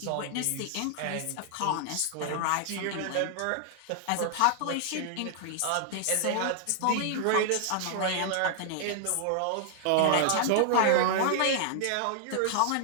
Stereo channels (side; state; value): both; different; correlation -0.01